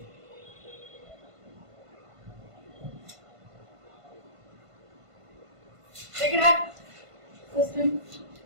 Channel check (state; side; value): late; left; 1.5 ms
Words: Take it up. System.